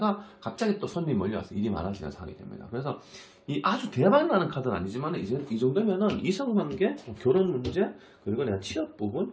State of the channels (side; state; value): both; identical; correlation 1.00